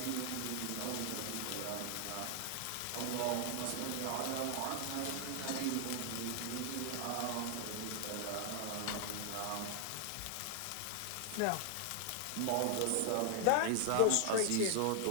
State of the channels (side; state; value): both; different; correlation 0.00